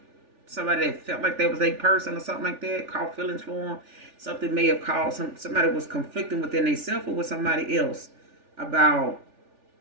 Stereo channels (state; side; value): late; left; 3.4 ms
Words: somebody that felt like that was a person or something like that, caught feelings for them. Something may have caused somebody was conflicting within themselves or with somebody else about